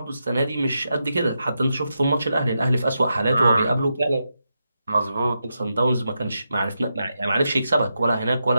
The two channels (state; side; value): inverted; both; correlation -0.86